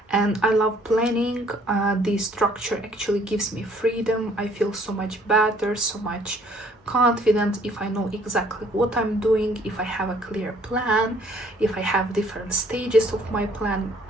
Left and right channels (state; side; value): normal; both; correlation 0.61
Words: and I love planning. The structure actually gives me freedom. I feel so much better, so much confident if I know exactly what I'm doing, if I have a clear plan, if I have different stages of my plan.